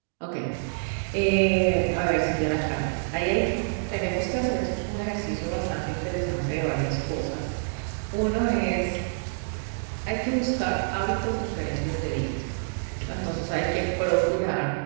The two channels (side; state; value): left; silent; digital silence